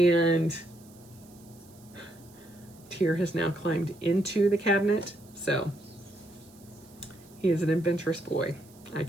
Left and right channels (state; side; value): noise; right; hiss, 26 dB below the sound